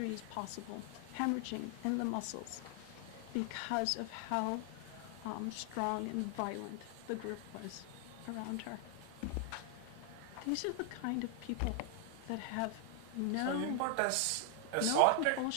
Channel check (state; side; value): different; both; correlation 0.00